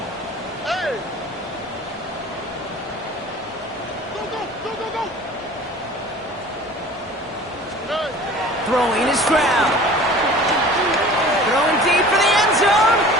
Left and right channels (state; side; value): normal; both; correlation 0.44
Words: Hey! Go. Throwing is Stroud. Throwing deep for the end zone.